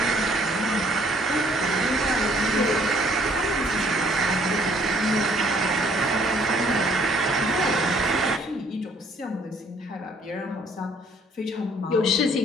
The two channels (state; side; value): normal; both; correlation 0.62